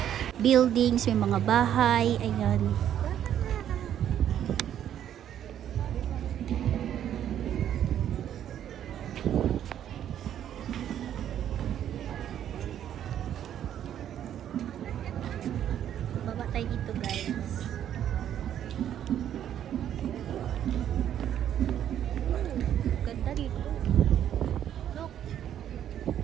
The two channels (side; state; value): left; quieter; 10.4 dB